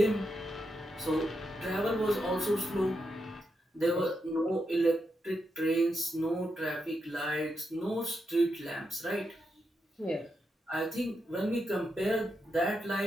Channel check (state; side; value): normal; both; correlation 0.84